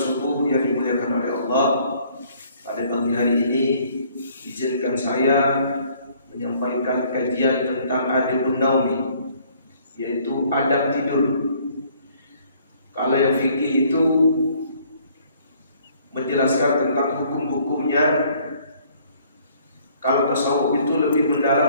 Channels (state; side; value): inverted; both; correlation -0.60